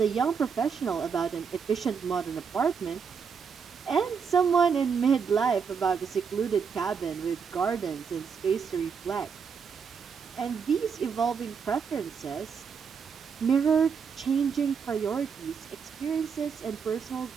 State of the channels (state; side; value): quieter; left; 6.2 dB